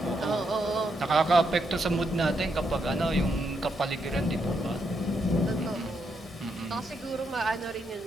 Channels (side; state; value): both; normal; correlation 0.79